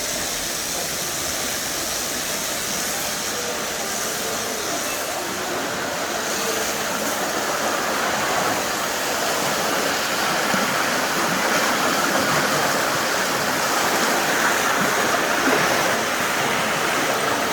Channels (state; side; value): identical; both; correlation 1.00